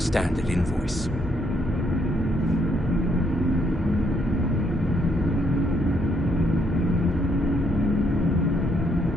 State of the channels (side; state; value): both; normal; correlation 0.71